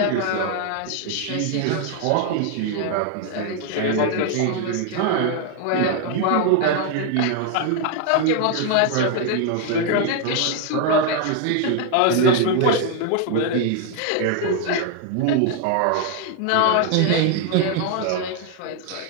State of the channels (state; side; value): different; both; correlation 0.00